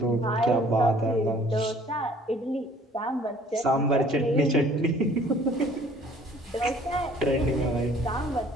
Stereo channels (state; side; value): normal; both; correlation 0.55